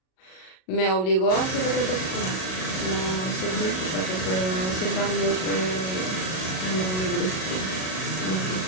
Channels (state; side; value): late; right; 38 ms